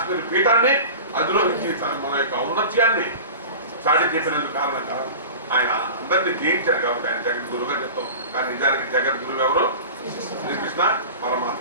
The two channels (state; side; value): inverted; both; correlation -0.34